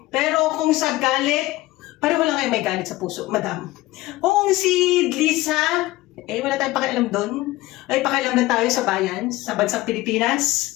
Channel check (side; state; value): right; quieter; 18.1 dB